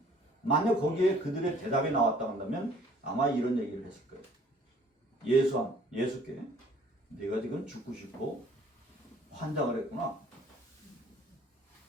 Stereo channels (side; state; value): both; normal; correlation 0.56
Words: 만약 거기에 그들의 대답이 나왔다 한다면 아마 이런 얘기를 했을 거예요. 예수께 네가 지금 죽고 싶고 환장을 했구나.